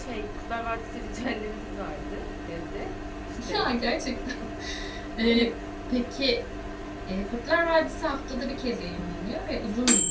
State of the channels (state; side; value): identical; both; correlation 1.00